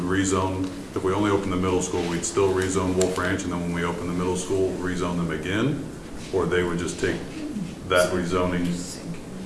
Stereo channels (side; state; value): both; identical; correlation 1.00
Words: rezone, if we only open the middle school, we'd still rezone Wolf Ranch, and then when we open the middle school, rezone them again? Or they would just take that rezoning?